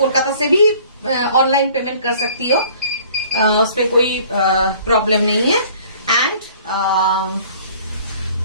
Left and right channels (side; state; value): both; inverted; correlation -0.52